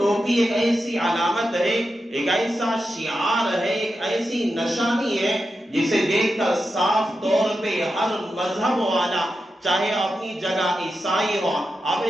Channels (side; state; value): both; normal; correlation 0.89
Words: ایک ایسی علامت ہے، ایک ایسا شعار ہے، ایک ایسی نشانی ہے جسے دیکھ کر صاف طور پہ ہر مذہب والا، چاہے اپنی جگہ عیسائی ہو،